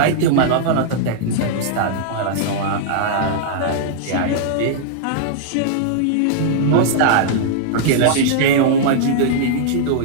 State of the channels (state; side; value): different; both; correlation -0.01